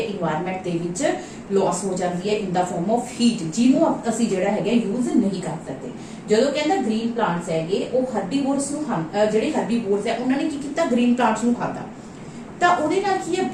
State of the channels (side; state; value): both; identical; correlation 1.00